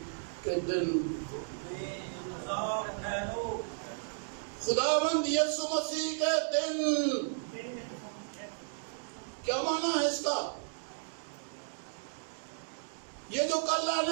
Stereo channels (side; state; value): left; silent; digital silence